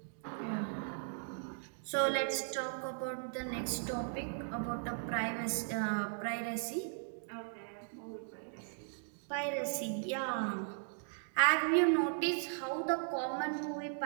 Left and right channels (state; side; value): silent; left; digital silence